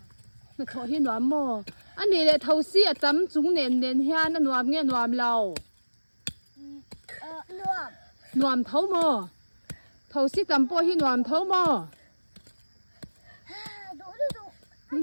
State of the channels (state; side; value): inverted; both; correlation -1.00